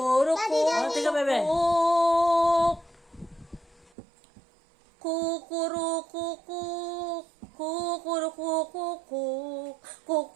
tika, bebe. Kukurukukuk. Kukurukukuk.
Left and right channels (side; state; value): left; drops out; at 3.9 s